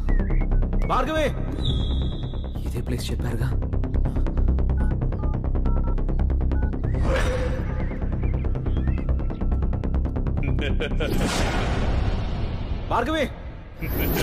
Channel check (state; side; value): identical; both; correlation 1.00